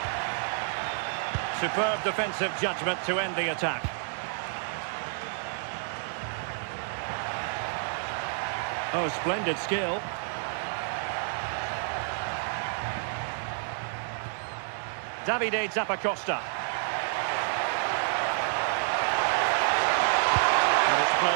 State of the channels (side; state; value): left; silent; digital silence